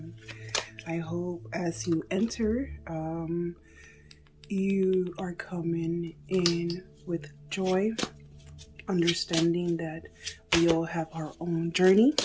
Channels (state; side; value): identical; both; correlation 1.00